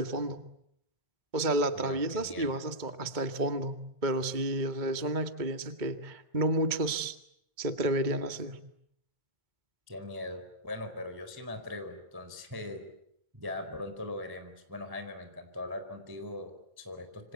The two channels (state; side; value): late; left; 2.2 ms